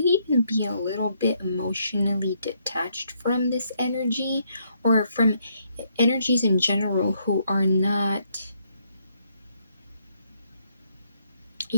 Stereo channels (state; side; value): inverted; both; correlation -0.73